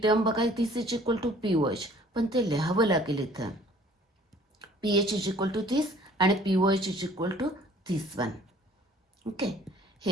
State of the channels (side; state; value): both; normal; correlation 0.54